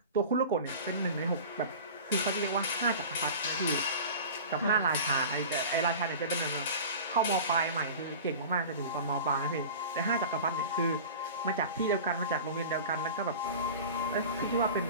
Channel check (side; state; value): both; inverted; correlation -0.36